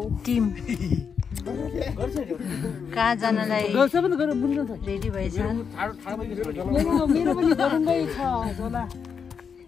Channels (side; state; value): right; quieter; 6.5 dB